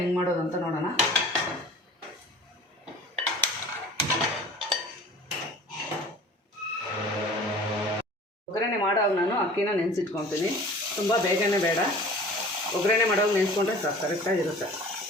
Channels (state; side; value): normal; both; correlation 0.44